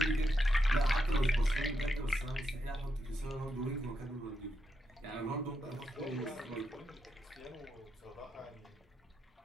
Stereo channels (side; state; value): both; normal; correlation 0.83